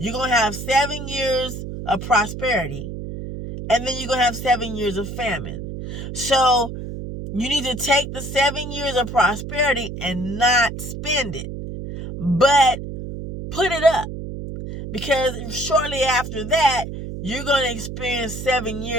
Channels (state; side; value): noise; right; hum, 8 dB below the sound